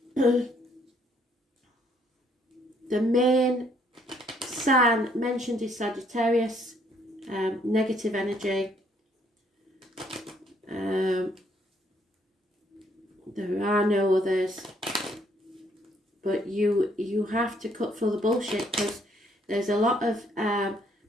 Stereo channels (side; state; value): both; normal; correlation 0.67